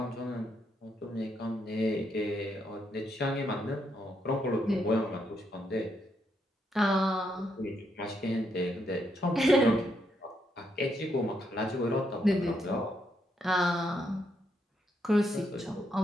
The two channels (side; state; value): both; normal; correlation 0.78